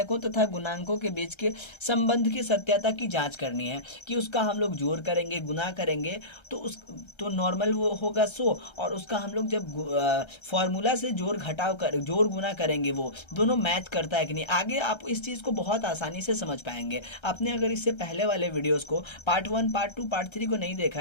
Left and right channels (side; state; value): right; late; 1.3 ms